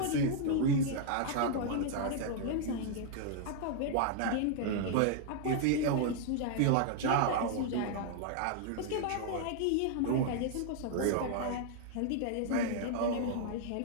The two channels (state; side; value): different; both; correlation 0.00